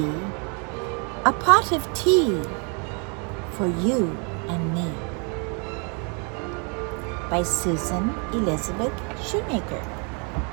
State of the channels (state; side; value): quieter; left; 35.8 dB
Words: a pot of tea for you and me. By Susan Elizabeth Shoemaker.